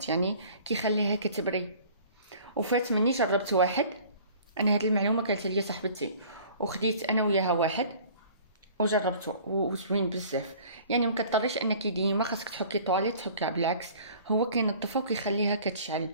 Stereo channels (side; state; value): both; inverted; correlation -0.49